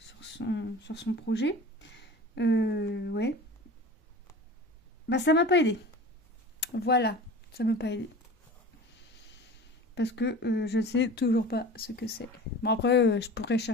projet. Ouais. Bah ça m'a pas aidé. Voilà, ça m'a pas aidé. Parce que je ne sais toujours pas ce que c'est. Bon après, je pourrais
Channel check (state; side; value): normal; both; correlation 0.37